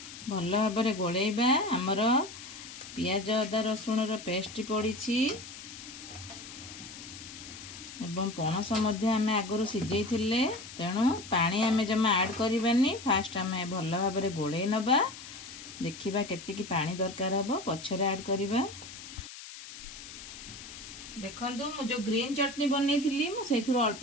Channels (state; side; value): noise; left; hiss, 13 dB below the sound